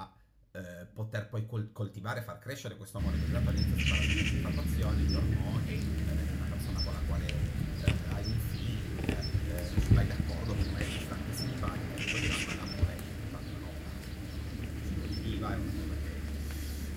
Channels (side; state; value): both; identical; correlation 1.00